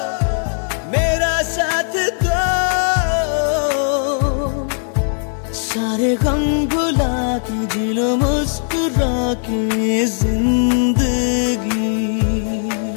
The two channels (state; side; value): silent; right; digital silence